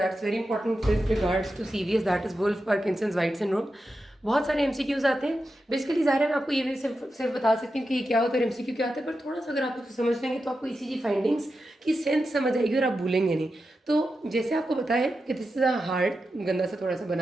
very important with regards to CVS, that is Wolff Parkinson's White syndrome. बहुत सारे एमसीक्यूज आते हैं। बेसिकली ज़ाहिर है मैं आपको ये भी सिर्फ बता सकती हूँ कि ये क्या होता है, एमसीक्यू क्या होता है, पर थोड़ा सा अगर आप उसको समझ लेंगे तो आपको ईसीजी फाइंडिंग्स की सेंस समझ आएगी और आप भूलेंगे नहीं। तो जैसे आपको बताया कि दिस इज़ अ हार्ट, गंदा से थोड़ा सा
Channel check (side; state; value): both; normal; correlation 0.90